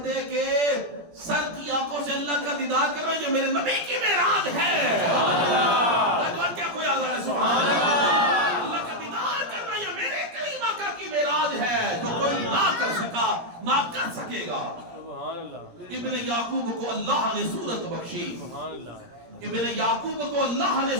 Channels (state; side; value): late; left; 17 ms